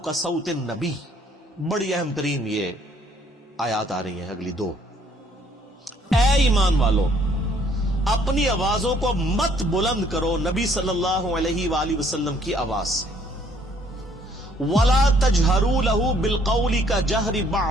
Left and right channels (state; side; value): normal; both; correlation 0.63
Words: صوت النبی. بڑی اہم ترین یہ آیات آ رہی ہیں اگلی دو. اے ایمان والو، اپنی آوازوں کو مت بلند کرو نبی صلی اللہ علیہ وآلہ وسلم کی آواز سے. وَلَا تَجْهَرُوا لَهُ بِالْقَوْلِ كَجَهْرِ